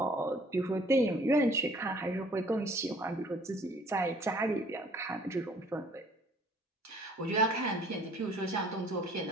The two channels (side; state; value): both; normal; correlation 0.56